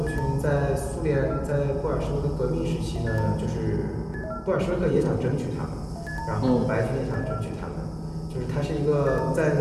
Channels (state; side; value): identical; both; correlation 1.00